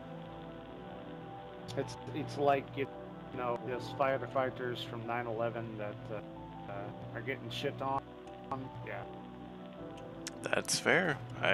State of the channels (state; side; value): identical; both; correlation 1.00